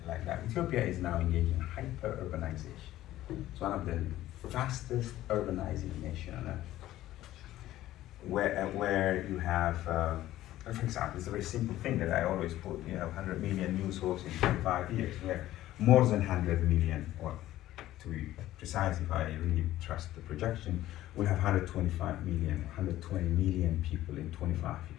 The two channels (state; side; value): quieter; right; 14.6 dB